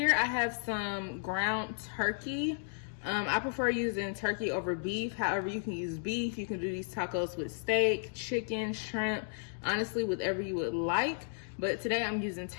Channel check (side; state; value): right; silent; digital silence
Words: I have some ground turkey. I prefer using turkey over beef. However, you can use beef. You can do these tacos with steak, chicken, shrimp, honestly, whatever you would like. But today I'm using